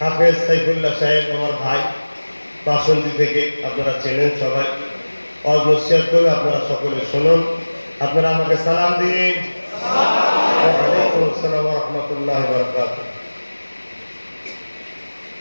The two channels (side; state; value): both; inverted; correlation -1.00